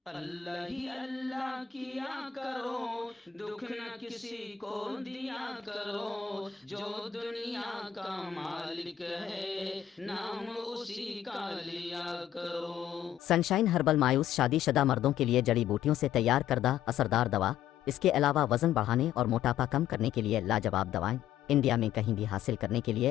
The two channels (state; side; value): quieter; right; 10.0 dB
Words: अल्लाह ही अल्लाह किया करो, दुख न किसी को दिया करो, जो दुनिया का मालिक है नाम उसी का लिया करो। सनशाइन हर्बल मायूस शादीशुदा मर्दों के लिए जड़ी बूटियों से तैयार करदा असरदार दवा। इसके अलावा वजन बढ़ाने और मोटापा कम करने के लिए लाजवाब दवाएं इंडिया में कहीं भी हासिल करने के